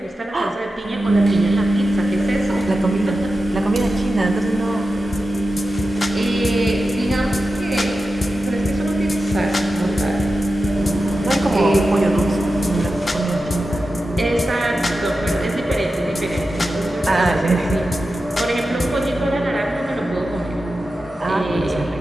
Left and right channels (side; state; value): both; normal; correlation 0.92